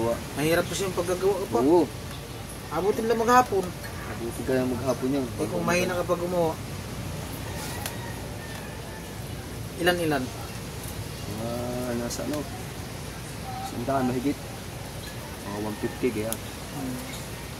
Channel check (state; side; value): identical; both; correlation 1.00